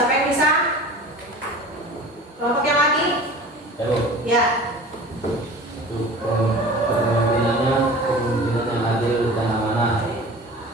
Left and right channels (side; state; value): both; normal; correlation 0.39